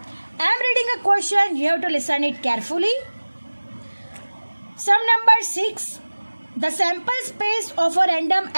I am reading a question, you have to listen it carefully. Sum number 6. The sample space of a random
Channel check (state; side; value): inverted; both; correlation -1.00